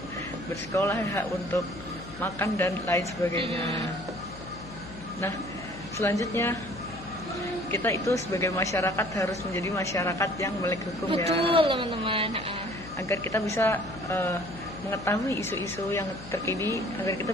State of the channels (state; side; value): noise; left; hum, 15 dB below the sound